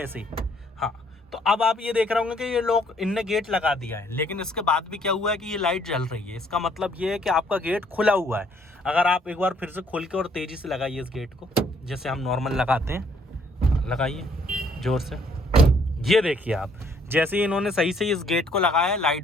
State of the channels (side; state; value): both; normal; correlation 0.65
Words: ही, हाँ। तो अब आप ये देख रहे होंगे कि ये लोग इनने गेट लगा दिया है, लेकिन इसके बाद भी क्या हुआ है कि ये लाइट जल रही है। इसका मतलब ये है कि आपका गेट खुला हुआ है। अगर आप एक बार फिर से खोल के और तेज़ी से लगाइए इस गेट को, जैसे हम नॉर्मल लगाते हैं, लगाइए ज़ोर से, ये देखिए आप जैसे ही इन्होंने सही से इस गेट को लगाया,